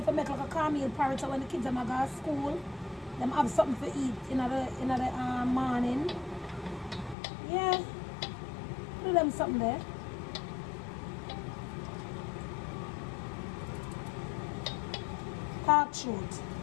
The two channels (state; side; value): drops out; right; at 7.2 s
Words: for make like a cornmeal porridge so when the kids them go to school, them have something to eat in the morning. Yeah. Do them something there. Talk truth.